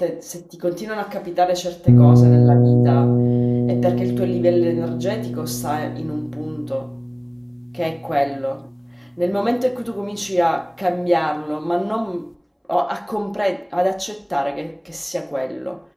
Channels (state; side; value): identical; both; correlation 1.00